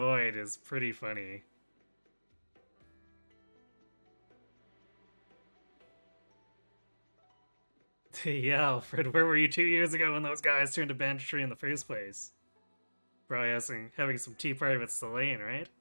is pretty funny. Yeah, Alfred, where were you 2 years ago when those guys turned to banditry in the first place? Probably having some tea party with Selene, right?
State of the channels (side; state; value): both; inverted; correlation -1.00